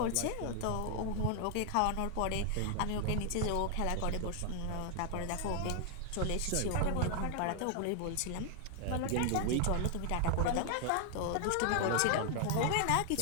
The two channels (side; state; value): both; different; correlation 0.00